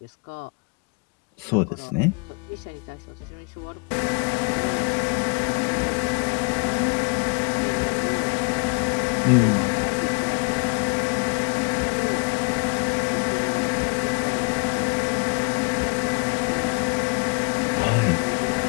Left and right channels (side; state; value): right; quieter; 31.1 dB